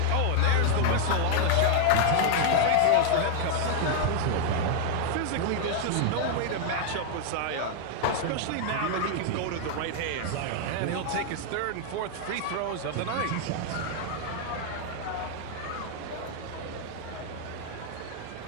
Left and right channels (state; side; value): different; both; correlation 0.00